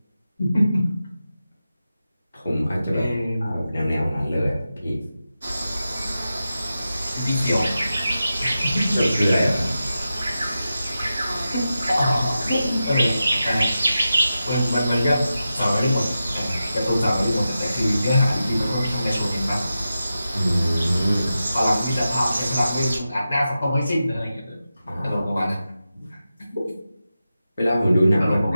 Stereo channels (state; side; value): inverted; both; correlation -0.91